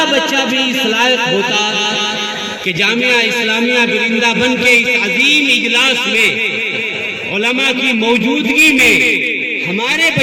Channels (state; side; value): identical; both; correlation 1.00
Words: बच्चा भी इस लायक होता कि जामिया इस्लामिया बिरिंदाबन के इस अजीम इजलास में उलमा की मौजूदगी में हमारे